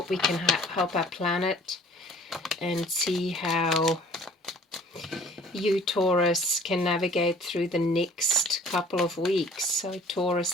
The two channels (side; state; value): both; normal; correlation 0.52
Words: we can help our planet and see how you, Taurus, can navigate through the next couple of weeks. So Taurus,